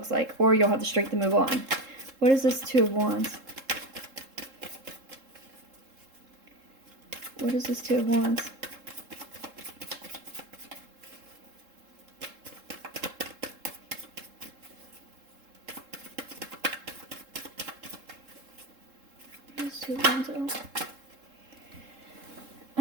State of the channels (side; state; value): left; late; 3.7 ms